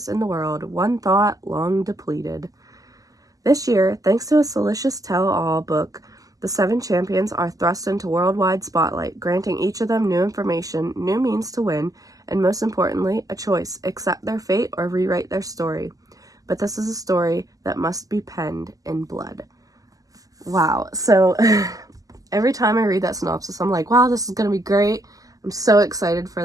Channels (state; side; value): late; left; 0.17 ms